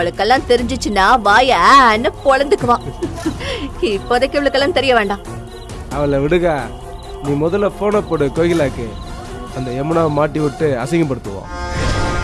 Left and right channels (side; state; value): both; identical; correlation 1.00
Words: தெரிஞ்சிச்சுன்னா வாயான்னு பொழந்துக்குவான். இப்போதைக்கு இவளுக்கெல்லாம் தெரிய வேண்டாம். அவளை விடுங்க. நீ முதல்ல போனை போடு கோகிலாக்கு. அந்த யமுனாவை மாட்டி விட்டு அசிங்கப்படுத்துவோம்.